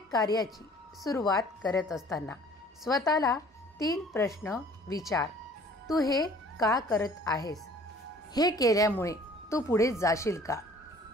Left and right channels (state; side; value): normal; both; correlation 0.52